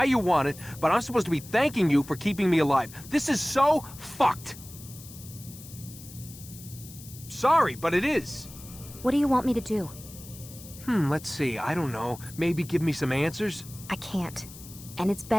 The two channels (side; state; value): left; noise; hiss, 17 dB below the sound